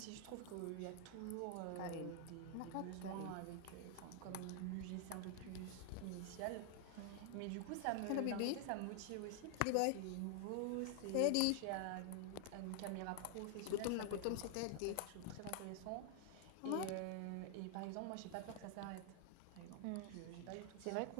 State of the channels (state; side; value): different; both; correlation 0.00